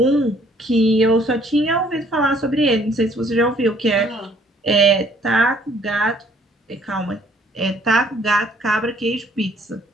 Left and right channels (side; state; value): both; normal; correlation 0.61